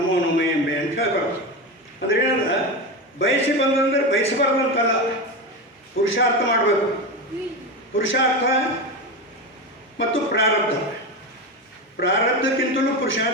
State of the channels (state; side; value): normal; both; correlation 0.19